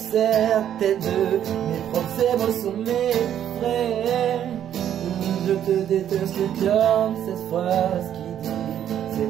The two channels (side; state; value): left; quieter; 10.2 dB